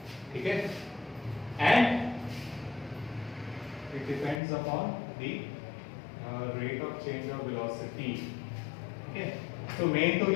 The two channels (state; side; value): drops out; right; at 4.4 s